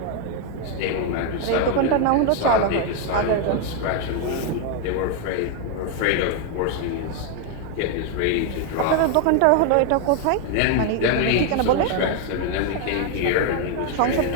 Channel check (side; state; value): both; different; correlation 0.01